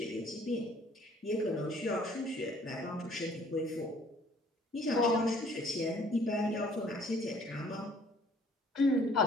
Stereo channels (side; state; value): both; normal; correlation 0.58